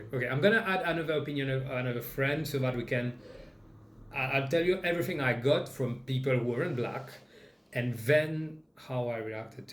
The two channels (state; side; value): identical; both; correlation 1.00